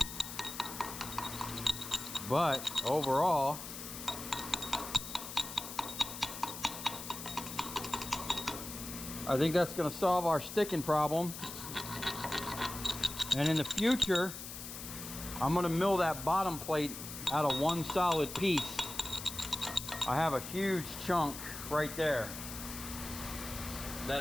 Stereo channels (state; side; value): noise; left; hiss, 9 dB below the sound